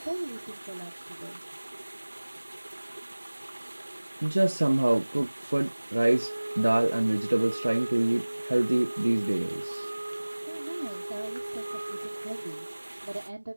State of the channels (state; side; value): inverted; both; correlation -1.00